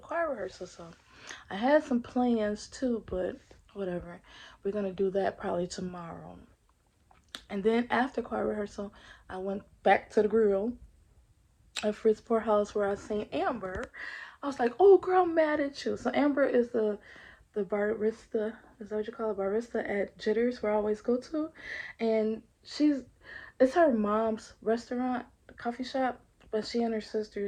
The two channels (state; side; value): identical; both; correlation 1.00